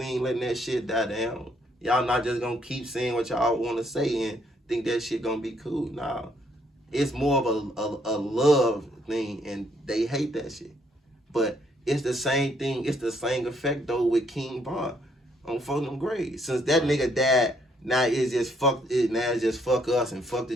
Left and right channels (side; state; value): both; normal; correlation 0.69